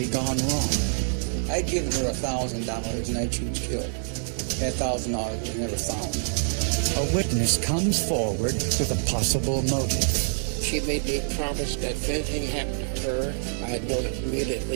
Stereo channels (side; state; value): left; silent; 61 dB below the other